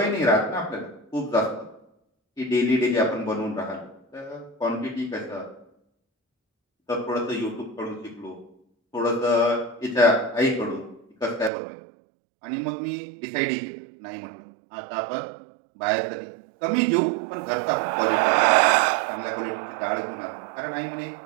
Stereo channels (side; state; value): left; drops out; at 11.5 s